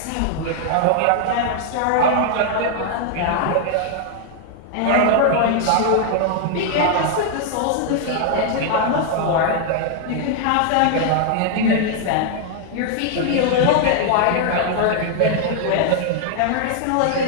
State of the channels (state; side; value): different; both; correlation 0.00